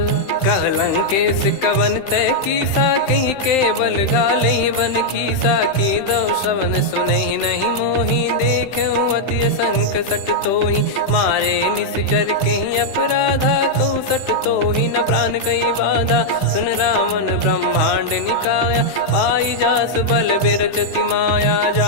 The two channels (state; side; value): late; right; 15 ms